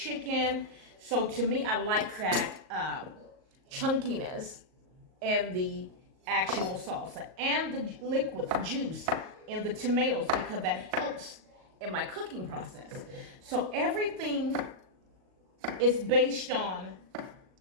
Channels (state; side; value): late; left; 38 ms